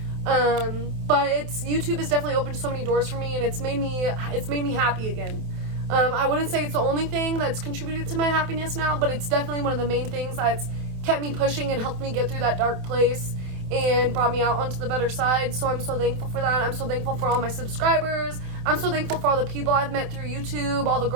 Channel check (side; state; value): left; late; 27 ms